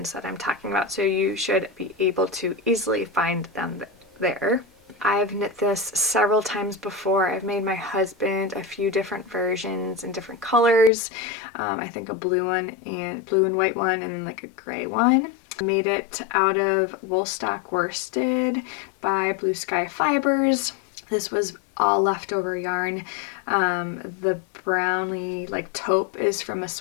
that I'm talking about, so you should be able to easily find them there. I've knit this several times before. I've made my husband a few different versions in different colors. I think a blue one and blue and white one, and then like a gray one. I made it out of Woolstock worsted by Blue Sky Fibers. This was all leftover yarn. The brownie like taupe is from a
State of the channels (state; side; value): drops out; right; at 10.9 s